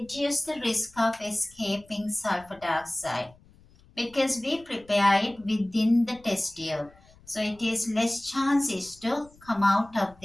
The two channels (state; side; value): noise; left; rumble, 27 dB below the sound